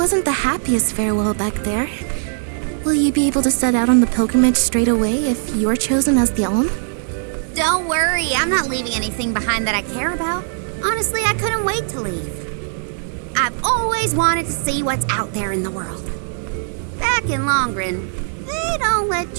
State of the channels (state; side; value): silent; left; digital silence